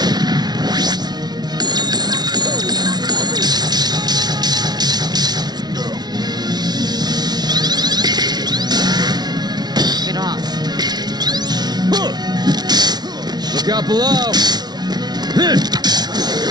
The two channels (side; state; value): left; late; 0.19 ms